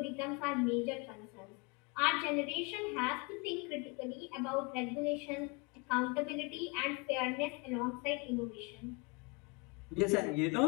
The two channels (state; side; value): quieter; right; 29.2 dB